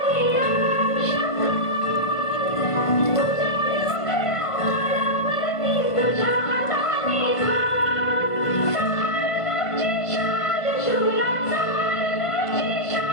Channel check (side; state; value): right; late; 1.5 ms